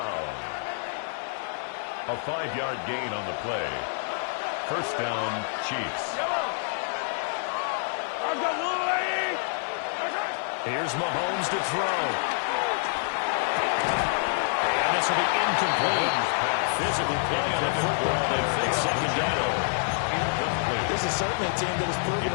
A 5-yard gain on the play. First down, Chiefs. Here's Mahomes to throw. And this will be incomplete. Physical play on the football. They fix second down. This is certainly a team that has proven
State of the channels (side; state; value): right; silent; digital silence